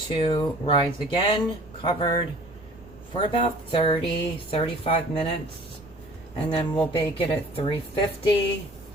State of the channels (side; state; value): right; noise; rumble, 23 dB below the sound